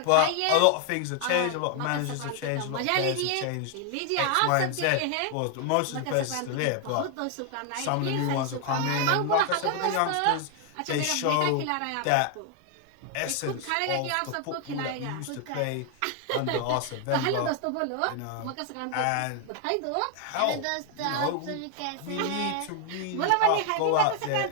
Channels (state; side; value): different; both; correlation 0.00